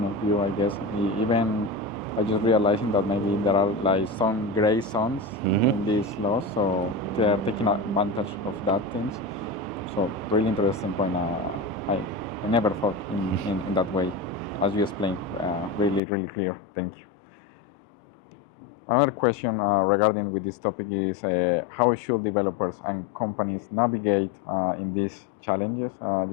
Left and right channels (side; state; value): right; drops out; at 16.0 s